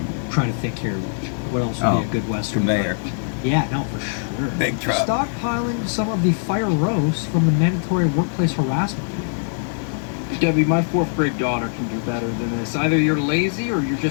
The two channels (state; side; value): silent; right; digital silence